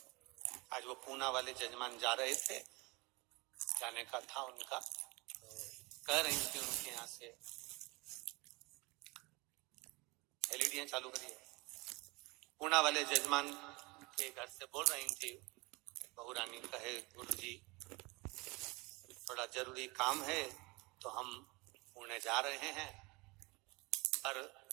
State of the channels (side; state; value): left; quieter; 25.5 dB